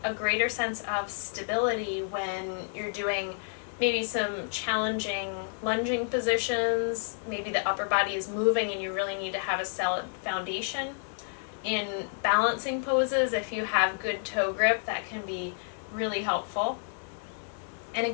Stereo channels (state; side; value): silent; right; 58 dB below the other